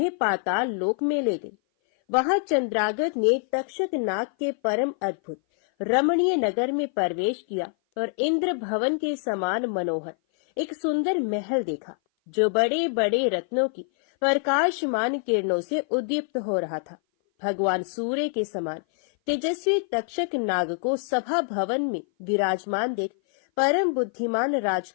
पाताल लोक में ले गई। वहां चंद्रागत ने तक्षक नाग के परम अद्भुत रमणीय नगर में प्रवेश किया और इंद्र भवन के समान मनोहर एक सुंदर महल देखा, जो बड़े बड़े रत्नों की प्रकाशमान किरणों से उद्दीप्त हो रहा था। भगवान सूर्य के समान तेजस्वी तक्षक नाग को सभा भवन में विराजमान देख परम बुद्धिमान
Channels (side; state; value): right; silent; 57 dB below the other